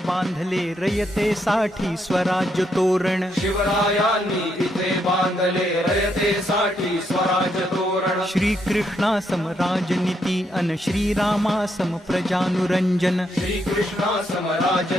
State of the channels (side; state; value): both; normal; correlation 0.77